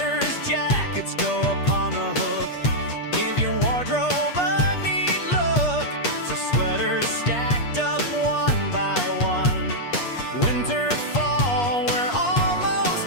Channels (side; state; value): right; late; 8.4 ms